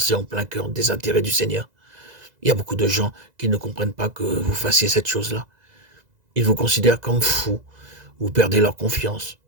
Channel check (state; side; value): late; left; 2.0 ms